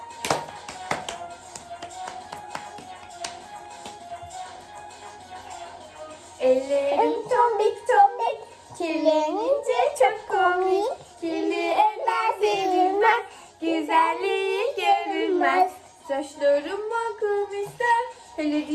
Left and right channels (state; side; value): identical; both; correlation 1.00